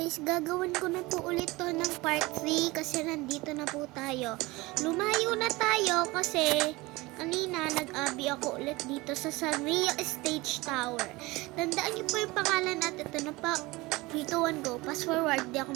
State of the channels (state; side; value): quieter; left; 21.9 dB